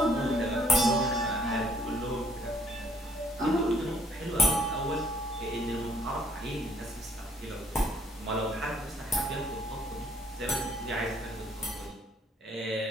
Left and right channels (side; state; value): both; normal; correlation 0.62